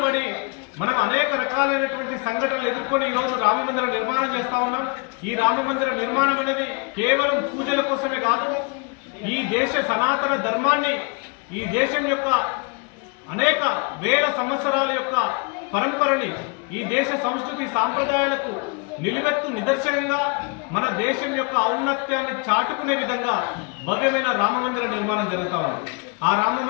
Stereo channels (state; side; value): quieter; right; 33.1 dB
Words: పడి మనం అనేక రకాలైనటువంటి సంఘటనలు ఎదుర్కొని ఈరోజు రామ మందిర నిర్మాణం చేస్తా ఉన్నాం. ఈ రామ మందిర నిర్మాణం అనేది కేవలం పూజల కోసమే కాదు, ఈ దేశ సనాతన ధర్మాన్ని, ఈ దేశం యొక్క అనేక వేల సంవత్సరాల యొక్క పరంపరని, ఈ దేశ సంస్కృతి సాంప్రదాయాలకు నిలువెత్తు నిదర్శనంగా మన దేశం యొక్క ఔన్నత్యాన్ని చాటుకునే విధంగా భవ్యమైన రామ మందిర నిర్మాణం జరుగుతూ ఉంది. ఆ రామ